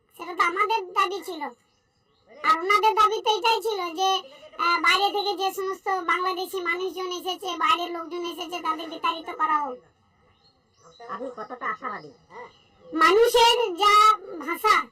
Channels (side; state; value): both; identical; correlation 1.00